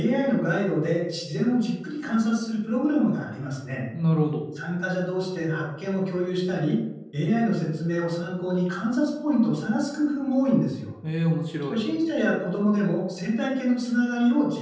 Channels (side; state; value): both; identical; correlation 1.00